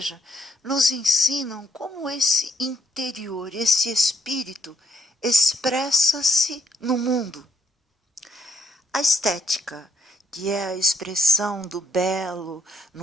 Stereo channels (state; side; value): normal; both; correlation 0.71